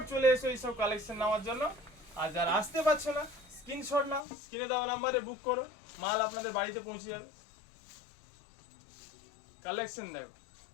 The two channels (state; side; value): drops out; right; at 4.2 s